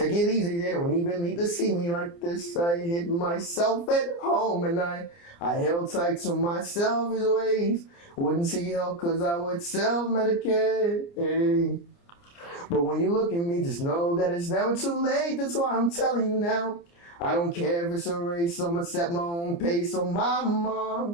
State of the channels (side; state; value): right; late; 29 ms